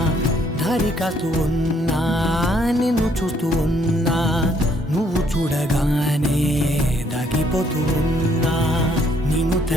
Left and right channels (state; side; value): normal; both; correlation 0.67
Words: దారి కాస్తూ ఉన్నా. నిన్ను చూస్తూ ఉన్నా, నువ్వు చూడగానే దాగిపోతూ ఉన్నా. నిన్ను